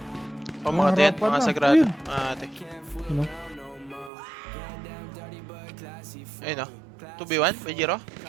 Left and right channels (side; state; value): left; drops out; at 4.1 s